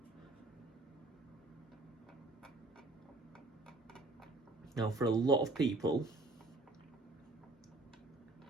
Now, for a lot of people,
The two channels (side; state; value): left; quieter; 3.1 dB